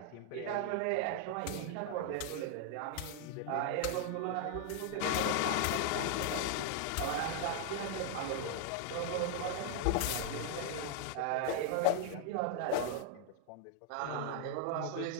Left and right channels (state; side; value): different; both; correlation -0.01